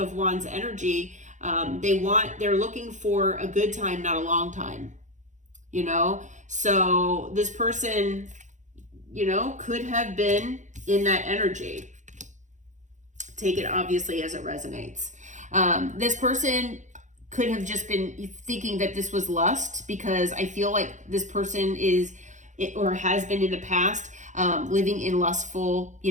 Wands energy, they're looking for a good time, not a long time, you know? So this person, you know, could have been in that energy. Take it obviously as it resonates. This person could have just been thinking that this was lust, because I feel like this person is, or has been in the past, living in lustful, you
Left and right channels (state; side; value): late; left; 0.35 ms